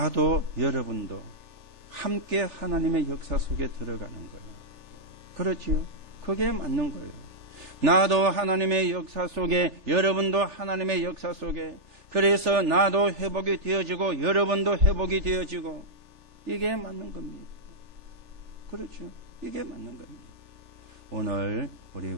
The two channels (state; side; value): late; left; 3.4 ms